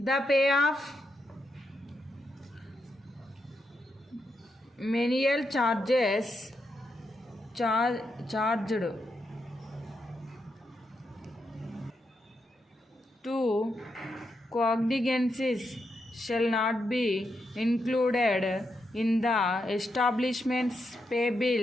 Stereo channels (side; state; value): both; normal; correlation 0.83